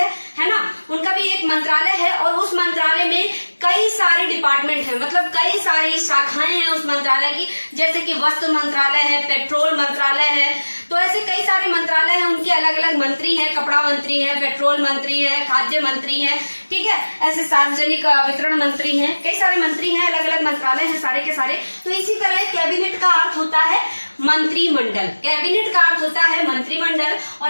है ना, उनका भी एक मंत्रालय है और उस मंत्रालय में कई सारे डिपार्टमेंट हैं, मतलब कई सारी शाखाएं हैं उस मंत्रालय की। जैसे कि वस्त्र मंत्रालय है, पेट्रोल मंत्रालय है, तो ऐसे कई सारे मंत्रालय हैं, उनके अलग अलग मंत्री हैं, कपड़ा मंत्री है, पेट्रोल मंत्री है, खाद्य मंत्री है, ठीक है। ऐसे सार्वजनिक वितरण मंत्री हैं, कई सारे मंत्री हैं, अलग अलग मंत्रालय हैं सारे के सारे। तो इसी तरह कैबिनेट का अर्थ होता है मंत्रिमंडल, कैबिनेट का अर्थ होता है मंत्रिमंडल,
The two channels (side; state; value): both; inverted; correlation -1.00